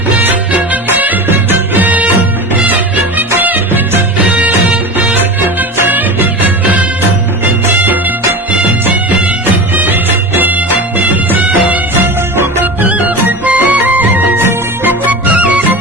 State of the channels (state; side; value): normal; both; correlation 0.29